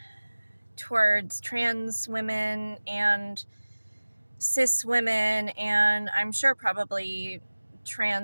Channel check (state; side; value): inverted; both; correlation -1.00